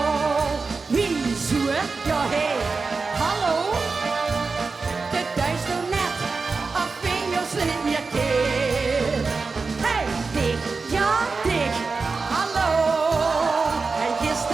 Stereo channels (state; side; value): quieter; left; 4.3 dB